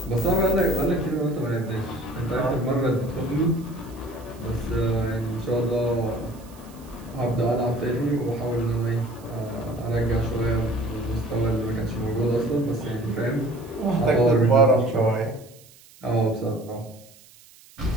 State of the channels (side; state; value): right; noise; hiss, 24 dB below the sound